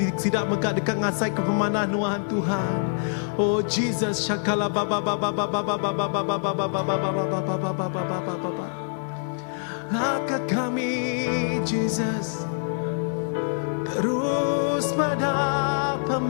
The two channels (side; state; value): right; silent; digital silence